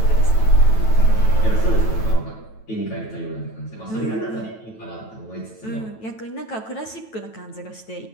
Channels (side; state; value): right; late; 9.1 ms